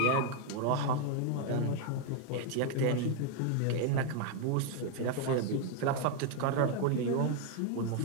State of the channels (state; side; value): different; both; correlation 0.01